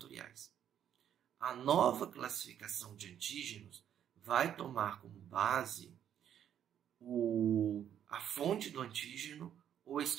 A nova classificação de antígenos vai tomar como base a fonte do antígeno ou a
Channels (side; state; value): left; quieter; 9.8 dB